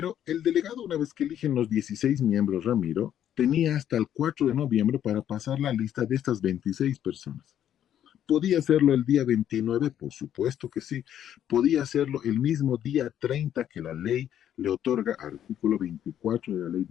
el delegado, una vez que eligen los 16 miembros, Ramiro, tenía hasta el 4 de noviembre para pasar la lista de estas 26 personas. ¿Podía hacerlo el día 29? Por supuesto que sí. ¿Podía hacerlo el mismo día 30 que la ley le otorga, artículo 24 de la ley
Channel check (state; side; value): quieter; right; 10.5 dB